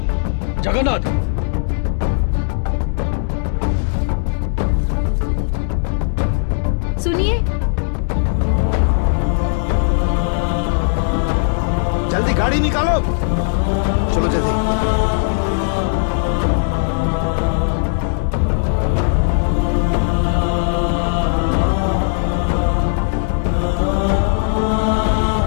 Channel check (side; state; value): right; silent; digital silence